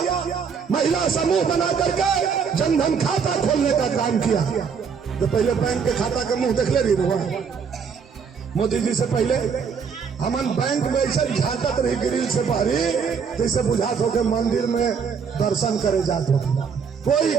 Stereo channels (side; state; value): left; quieter; 6.2 dB